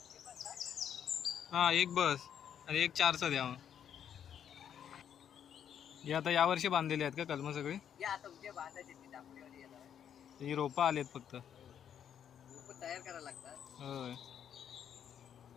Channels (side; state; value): right; quieter; 9.0 dB